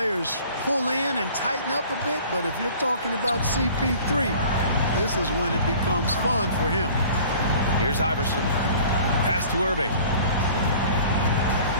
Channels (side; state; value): both; inverted; correlation -0.48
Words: pull in and tighten up a bit, but if you're talking about CP3, this is when it becomes fun for him. Here's Iverson. Pass to Irving.